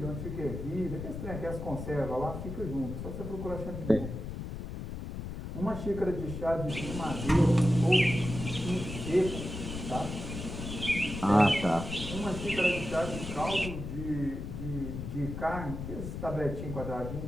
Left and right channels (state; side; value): noise; left; rumble, 7 dB below the sound